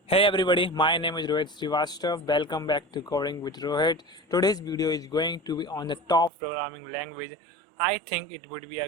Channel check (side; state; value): left; drops out; at 6.3 s